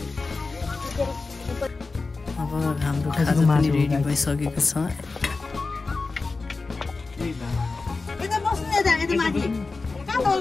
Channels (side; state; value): right; quieter; 3.9 dB